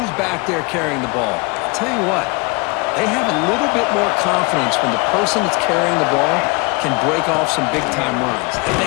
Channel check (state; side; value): quieter; right; 28.6 dB